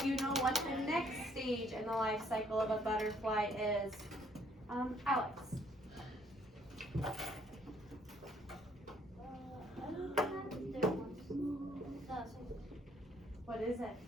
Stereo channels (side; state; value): both; normal; correlation 0.65